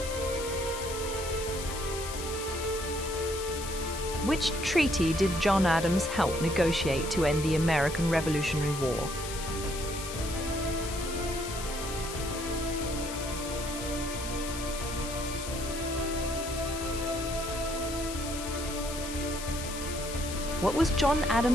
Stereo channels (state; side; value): noise; left; hiss, 8 dB below the sound